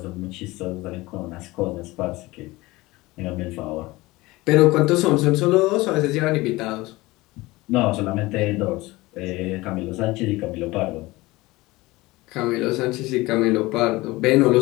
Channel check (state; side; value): quieter; right; 20.5 dB